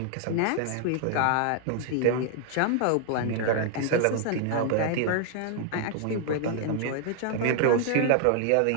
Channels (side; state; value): both; different; correlation 0.00